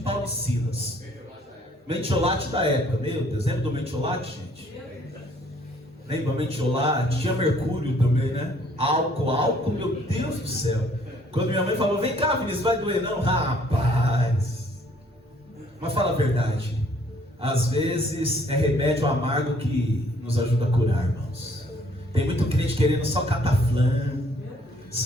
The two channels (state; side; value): normal; both; correlation 0.62